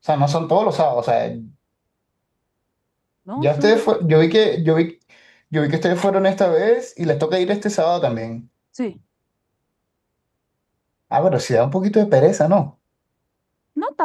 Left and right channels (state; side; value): identical; both; correlation 1.00